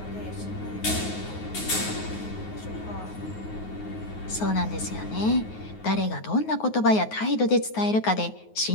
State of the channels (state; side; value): late; right; 9.4 ms